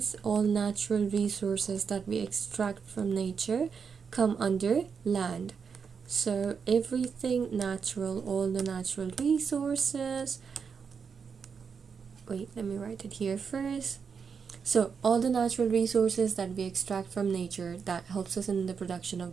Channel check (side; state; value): left; quieter; 6.1 dB